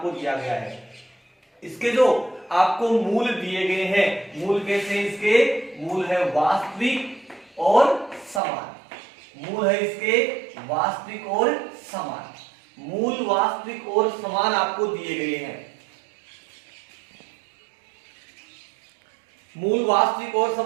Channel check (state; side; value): drops out; left; at 8.4 s